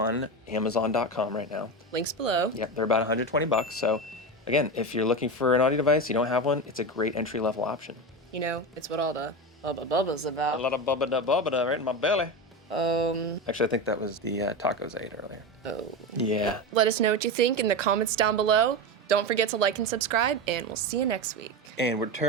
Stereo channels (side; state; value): both; normal; correlation 0.19